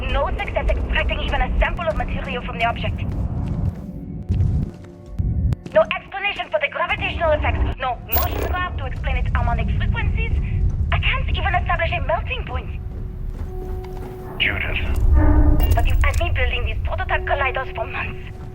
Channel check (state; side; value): identical; both; correlation 1.00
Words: no success extracting even a sample of material from the object. No explanation for the gravitational effects. No motion graph to explain its harmonic frequencies. I can't even establish a melting point. Judith, But you've had me building these prototype colliders for months.